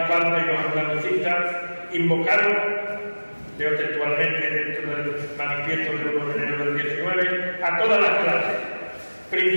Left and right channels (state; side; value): inverted; both; correlation -1.00